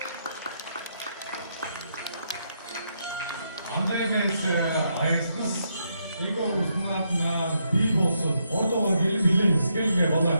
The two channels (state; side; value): inverted; both; correlation -0.79